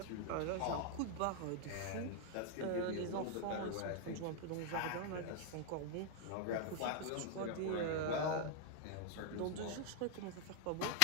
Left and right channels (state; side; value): different; both; correlation 0.00